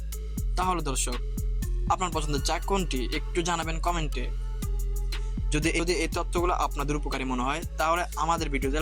তাহলে দর্শক, আপনার পছন্দের চা কোনটি একটু জানাবেন কমেন্টে। যদি এই তথ্যগুলো আপনাদের উপকারী মনে হয়, তাহলে আমাদের ভিডিওতে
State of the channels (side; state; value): both; identical; correlation 1.00